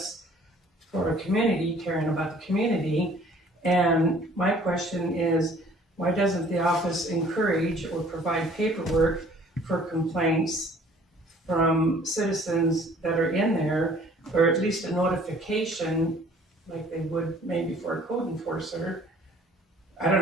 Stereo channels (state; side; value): normal; both; correlation 0.54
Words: for a community, caring about the community. And my question is, why doesn't the office encourage or provide paperwork for complaints from citizens that are in there, or at least a notification like they would maybe for a code enforcer? I don't